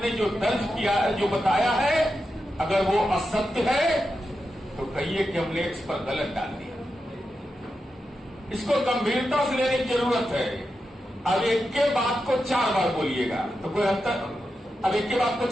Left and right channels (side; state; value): both; normal; correlation 0.89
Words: जो दर्ज किया है, जो बताया है, अगर वो असत्य है तो कहिए कि हमने इस पर गलत डाल दिया। इसको गंभीरता से लेने की जरूरत है। अब एक के बात को 4 बार बोलिएगा तो कोई अंतर। अब एक के बात को